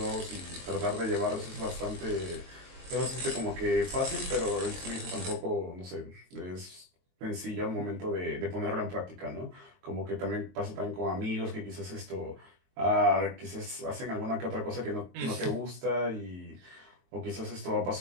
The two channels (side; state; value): left; late; 22 ms